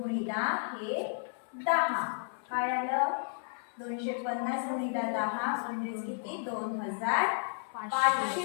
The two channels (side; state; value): right; silent; 56 dB below the other